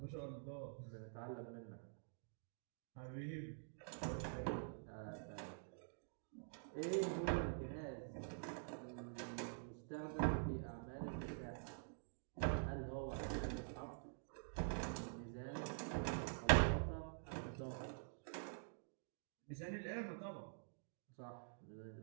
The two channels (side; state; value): left; silent; digital silence